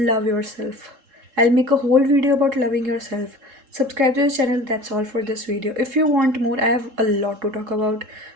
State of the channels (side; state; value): left; late; 3.7 ms